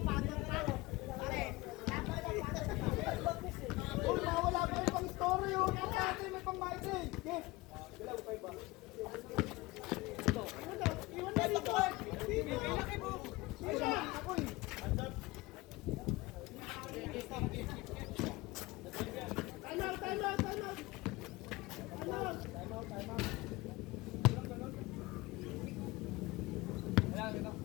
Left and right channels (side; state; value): right; quieter; 21.3 dB